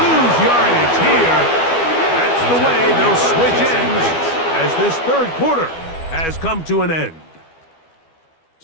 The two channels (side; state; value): right; late; 12 ms